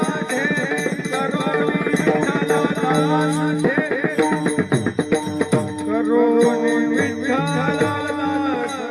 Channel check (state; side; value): identical; both; correlation 1.00